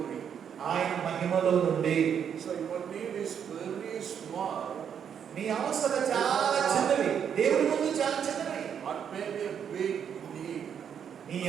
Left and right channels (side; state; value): left; quieter; 8.1 dB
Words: ఆయన మహిమలో నుండి. మీ అవసరం చాలా చిన్నవి, దేవుడి ముందు చాలా చిన్నవి. నీ